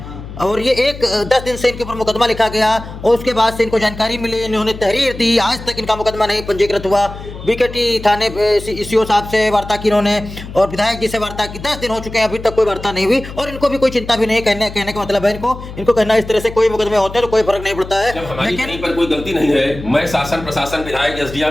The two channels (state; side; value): noise; left; hum, 12 dB below the sound